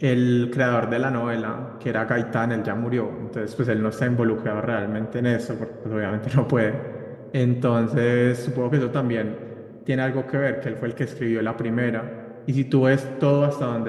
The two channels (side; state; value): both; identical; correlation 1.00